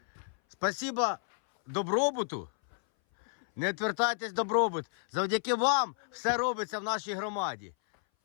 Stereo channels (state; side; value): silent; right; 57 dB below the other